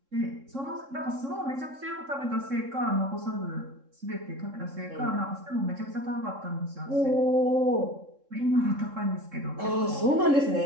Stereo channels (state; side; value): late; left; 3.7 ms